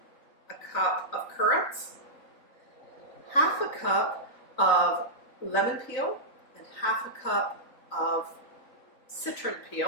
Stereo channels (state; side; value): late; right; 3.9 ms